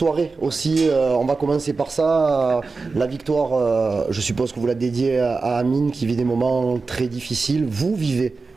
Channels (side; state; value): left; quieter; 4.1 dB